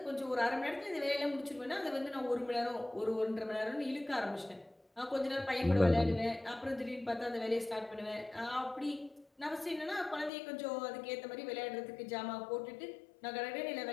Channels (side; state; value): right; drops out; at 10.3 s